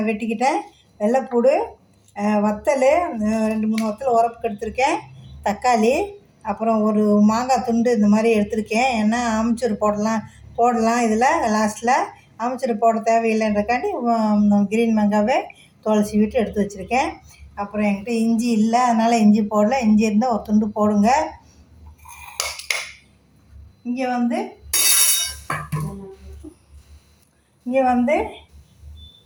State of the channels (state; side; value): identical; both; correlation 1.00